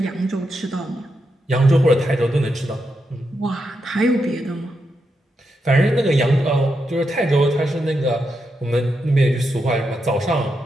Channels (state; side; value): normal; both; correlation 0.84